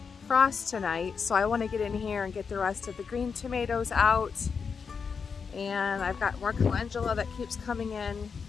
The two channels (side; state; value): right; quieter; 5.8 dB